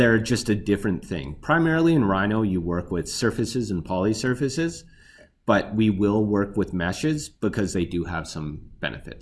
just a different thing. Primarily in Rhino, you work with surfaces and polysurfaces, but we will work with meshes because they do have some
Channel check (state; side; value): identical; both; correlation 1.00